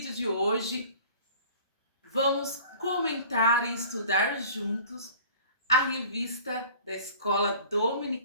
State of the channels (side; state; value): both; inverted; correlation -0.46